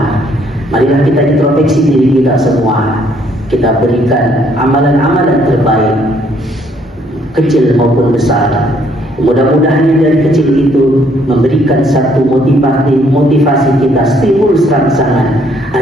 Marilah kita introspeksi diri kita semua. Kita berikan amalan-amalan terbaik, kecil maupun besar. Mudah-mudahan dari kecil itu memberikan satu motivasi kita, stimulus rangsangan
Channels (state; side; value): normal; both; correlation 0.66